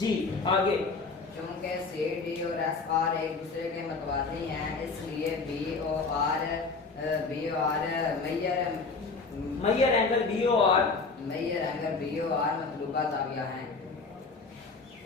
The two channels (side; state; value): right; quieter; 4.3 dB